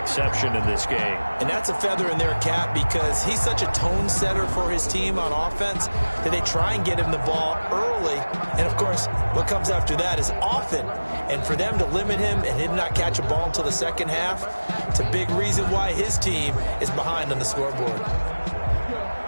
in this game. And that's a feather in their cap because he's such a tone setter for his team on offense that they try and get him the ball early. And, of course, what comes after that is often. And for them to limit him and him not catch a ball until the second half, it's a big reason why his team is behind on the scoreboard.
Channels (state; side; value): inverted; both; correlation -1.00